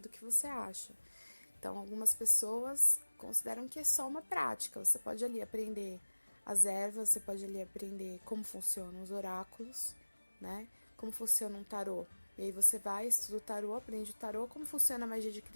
que você acha. Então, algumas pessoas consideram que é só uma prática, você pode ali aprender as ervas, você pode ali aprender como funcionam os oráculos, né? Como funciona um tarô. E aí você vai, estuda o tarô, aprende o tarô, como funciona a magia de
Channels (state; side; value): inverted; both; correlation -1.00